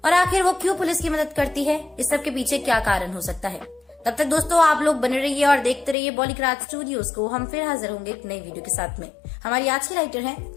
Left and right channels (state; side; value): drops out; right; at 6.0 s